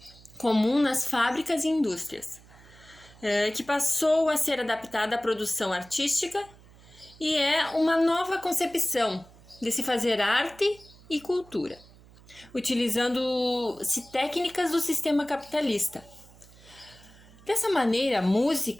comum nas fábricas e indústrias, que passou a ser adaptada à produção artística e é uma nova concepção de se fazer arte e cultura, utilizando-se técnicas do sistema capitalista. Dessa maneira,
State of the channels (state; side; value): noise; right; hum, 24 dB below the sound